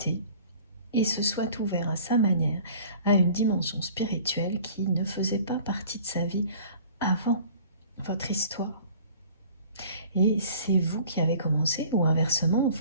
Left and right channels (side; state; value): both; inverted; correlation -0.48